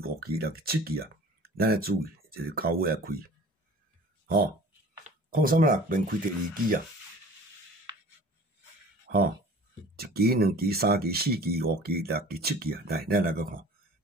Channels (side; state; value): both; normal; correlation 0.45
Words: 期、6期、7期咱要注意，就是到尾开。03啦，免开第二期1期、2期、3期、4期、5期、6期、7期来，咱来个看，